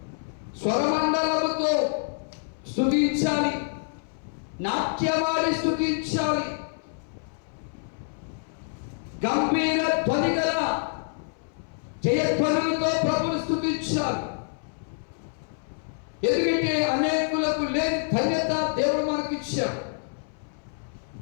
స్వరమండలముతో స్తుతించాలి, నాట్యమాడి స్తుతించాలి, గంభీర ధ్వని గల జయధ్వనులతో ప్రభుని స్తుతించాలి. ఎందుకంటే అనేకులకు లేని ధన్యత దేవుడు మనకిచ్చాడు.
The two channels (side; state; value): right; silent; 59 dB below the other